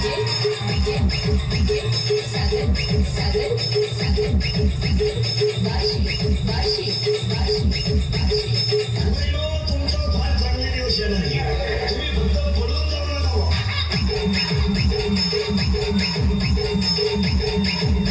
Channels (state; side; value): identical; both; correlation 1.00